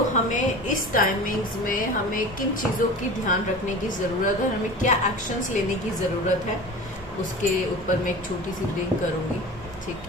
हमें इस टाइमिंग्स में हमें किन चीज़ों की ध्यान रखने की ज़रूरत है, हमें क्या एक्शंस लेने की ज़रूरत है, उसके ऊपर मैं एक छोटी सी ब्रेक करूँगी।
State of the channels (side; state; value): both; normal; correlation 0.35